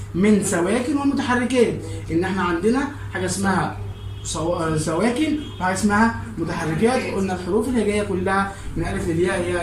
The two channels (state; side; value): identical; both; correlation 1.00